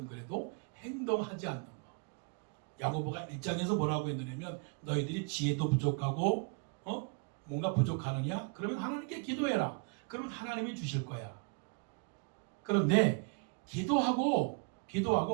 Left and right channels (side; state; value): left; quieter; 35.5 dB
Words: 그래도 행동하지 않는 거. 야고보가 1장에서 뭐라고 했느냐면 너희들이 지혜도 부족하고 뭔가 부족하느냐? 그러면 하나님께 기도해라. 그러면 하나님이 주실 거야. 그런데 기도하고